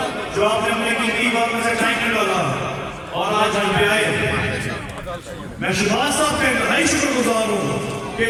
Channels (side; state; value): both; identical; correlation 1.00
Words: जो आपने अपने कीमती वक्त में से टाइम निकाला और आज यहाँ पे आए। मैं शहबाज साहब का इंतहाई शुक्रगुजार हूँ कि